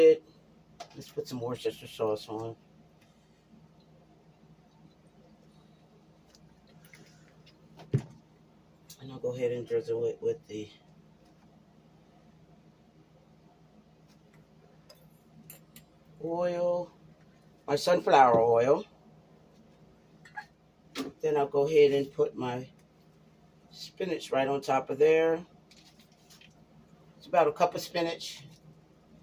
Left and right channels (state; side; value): identical; both; correlation 1.00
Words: Let's put some Worcestershire sauce on. And I'll go ahead and drizzle it with the oil, my sunflower oil. Then I'll go ahead and put my spinach right on top of there. It's about a cup of spinach.